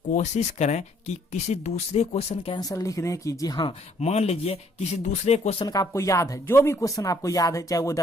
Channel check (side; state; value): both; normal; correlation 0.65